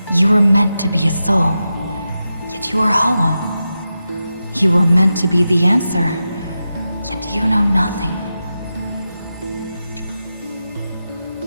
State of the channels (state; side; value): inverted; both; correlation -0.91